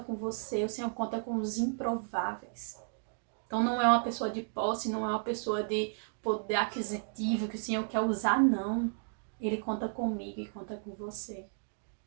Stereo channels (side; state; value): left; silent; digital silence